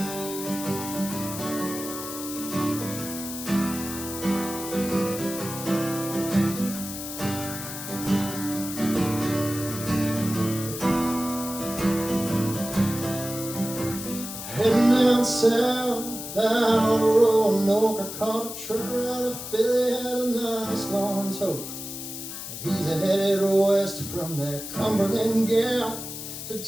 Heading down south, out of Roanoke, I caught a trucker out of Philly, had a nice long toke. He's headed west from that Cumberland Gap to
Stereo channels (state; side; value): noise; left; hiss, 8 dB below the sound